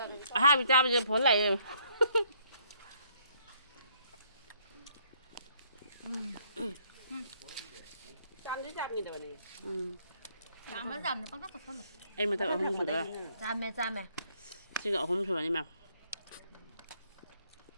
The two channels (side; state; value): both; inverted; correlation -0.67